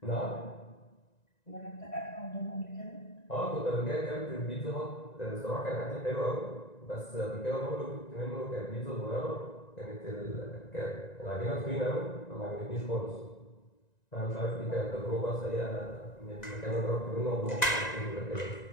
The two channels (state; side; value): late; right; 1.9 ms